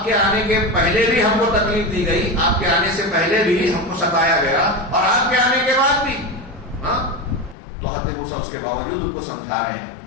کے آنے کے پہلے بھی ہم کو تکلیف دی گئی, آپ کے آنے سے پہلے بھی ہم کو ستایا گیا, اور آپ کے آنے کے بعد بھی. ہاں تو حضرت موسیٰ اس کے باوجود ان کو سمجھا رہے ہیں.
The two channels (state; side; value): drops out; right; at 7.6 s